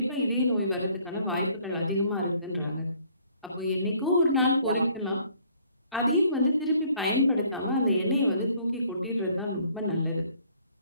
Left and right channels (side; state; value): both; inverted; correlation -0.61